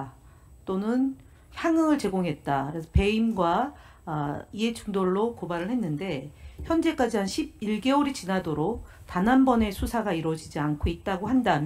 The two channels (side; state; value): both; identical; correlation 1.00